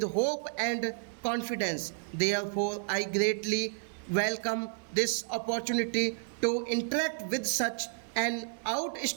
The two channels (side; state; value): left; silent; 57 dB below the other